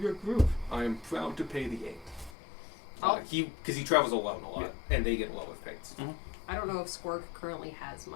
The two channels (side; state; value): right; drops out; at 2.3 s